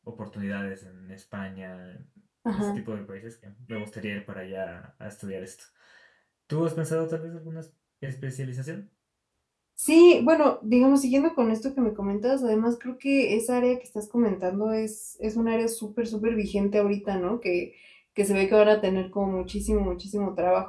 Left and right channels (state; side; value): identical; both; correlation 1.00